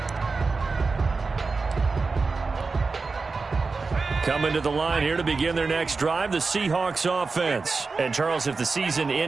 Coming to the line here to begin their next drive, the Seahawks offense. And, Charles, if the season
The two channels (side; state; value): left; quieter; 4.2 dB